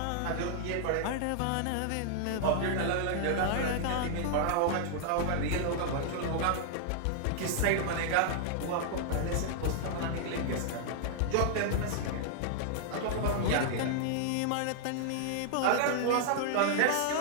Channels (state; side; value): different; both; correlation -0.01